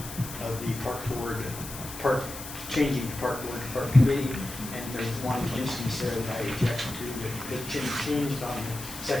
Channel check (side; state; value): left; noise; hiss, 11 dB below the sound